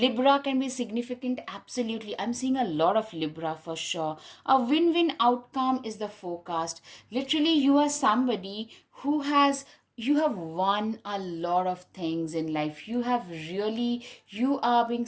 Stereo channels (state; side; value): identical; both; correlation 1.00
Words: can be significant, absolutely. I'm seeing a lot of Libra for sure. A win win outcome is the forecast. Literally, you are somebody who has. You have won a lot of things in life. You are being